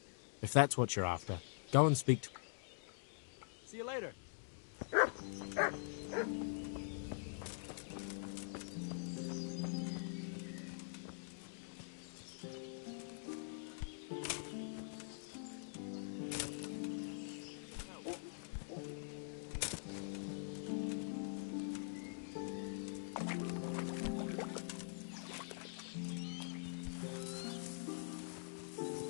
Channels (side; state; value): right; silent; digital silence